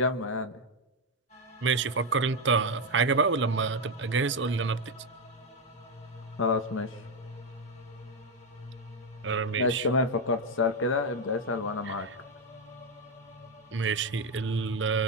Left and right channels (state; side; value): normal; both; correlation 0.06